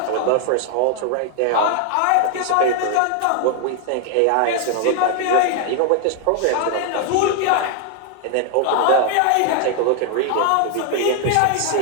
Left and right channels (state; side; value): different; both; correlation 0.00